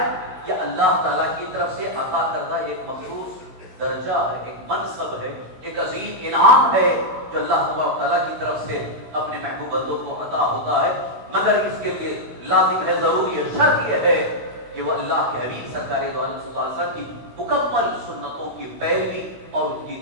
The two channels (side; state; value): left; late; 16 ms